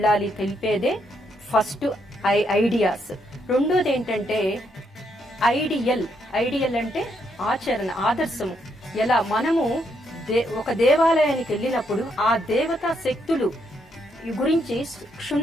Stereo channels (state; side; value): normal; both; correlation 0.76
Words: తెలిపేదే ఫస్ట్ ఐడియాస్. రెండోది ఏంటంటే ఐడియల్. ఐడియల్ అంటే ఆచరణ, ఆదర్శము. ఎలా మనము ఒక దేవాలయానికి వెళ్ళినప్పుడు ఆ దేవతా శక్తులు గురించి